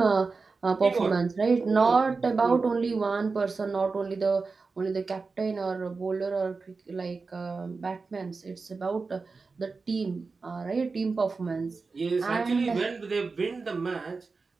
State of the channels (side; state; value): left; quieter; 4.3 dB